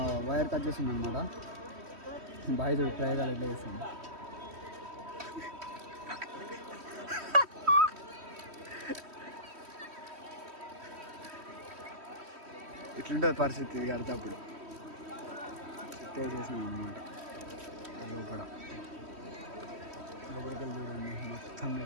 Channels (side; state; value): left; late; 3.1 ms